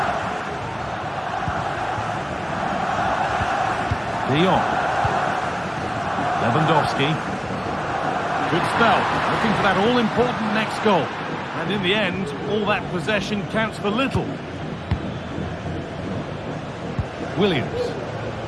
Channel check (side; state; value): both; identical; correlation 1.00